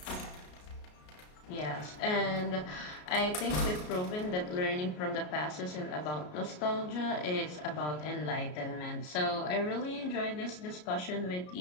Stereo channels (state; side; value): late; right; 33 ms